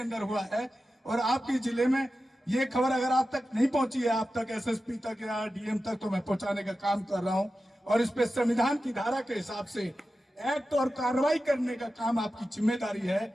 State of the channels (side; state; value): both; normal; correlation 0.93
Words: हुआ है और आपके जिले में ये खबर अगर आप तक नहीं पहुंची है, आप तक एसएसपी तक या डीएम तक, तो मैं पहुंचाने का काम कर रहा हूं और इस पे संविधान की धारा के हिसाब से एक्ट और कार्रवाई करने का काम आपकी जिम्मेदारी